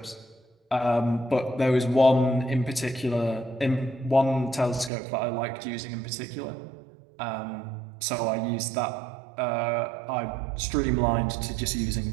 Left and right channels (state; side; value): drops out; left; at 4.9 s